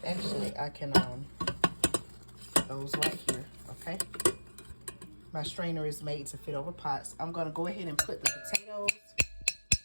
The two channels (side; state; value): both; inverted; correlation -1.00